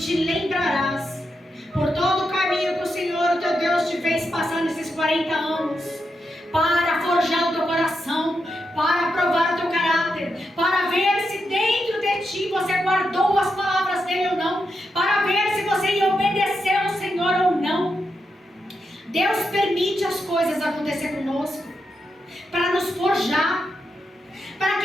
lembrarás por todo o caminho que o Senhor, o teu Deus, te fez passar nesses 40 anos, para forjar o teu coração, para provar o teu caráter, para ver se dentro de ti você guardou as palavras dele ou não, para ver se você ia obedecer ao Senhor ou não. Deus permite as coisas acontecer conosco para nos forjar, para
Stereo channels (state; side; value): normal; both; correlation 0.85